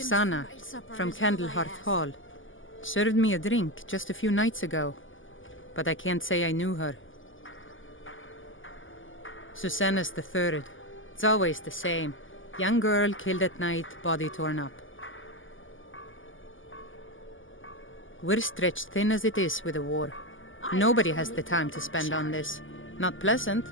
from Candlehearth Hall. Served me a drink just a few nights ago. But I can't say I knew her. Susanna's the third. It's always the same. Young girl killed at night, body torn up. We're stretched thin as it is with the war. Nobody has the time to spend on this. Not pleasant,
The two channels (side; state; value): right; late; 0.58 ms